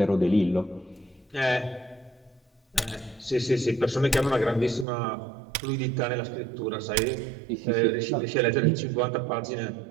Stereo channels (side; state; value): left; drops out; at 4.9 s